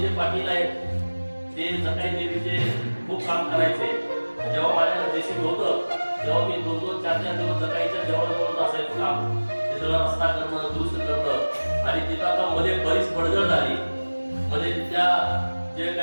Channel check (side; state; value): both; inverted; correlation -1.00